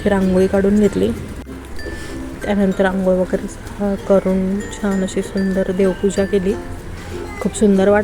रांगोळी काढून घेतली. त्यानंतर आंघोळ वगैरे करून छान अशी सुंदर देवपूजा केली. खूप सुंदर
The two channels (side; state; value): both; identical; correlation 1.00